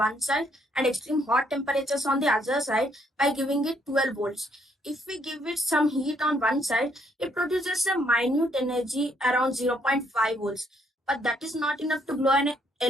side and extreme hot temperatures on the other side by giving it 12 volts. If we give it some heat on one side, it produces a minute energy around 0.5 volts. But that is not enough to glow an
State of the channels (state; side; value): normal; both; correlation 0.70